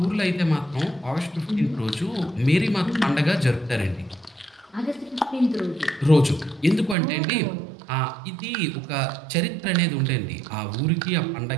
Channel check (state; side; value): drops out; left; at 7.0 s